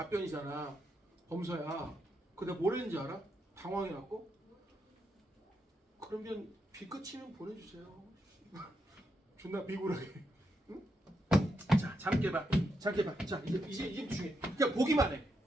범서야. 그 내가 뭘 했는지 알아? 당황해갖고 그러면 비 끝이면 보내주세요. 존나 비굴하게. 응? 자, 잠 깨봐. 자, 이제 중요해. 그냥 보기만 해.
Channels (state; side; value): normal; both; correlation 0.82